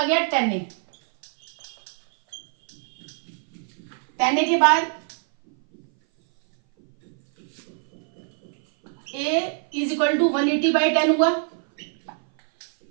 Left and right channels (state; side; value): silent; left; 58 dB below the other